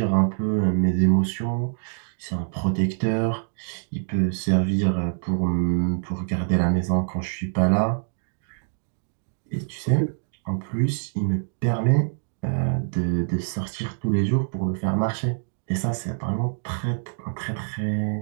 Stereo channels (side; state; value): left; silent; digital silence